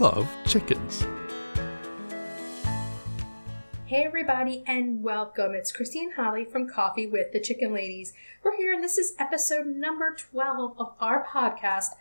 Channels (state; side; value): inverted; both; correlation -1.00